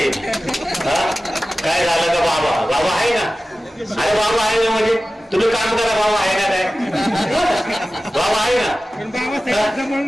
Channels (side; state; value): both; normal; correlation 0.95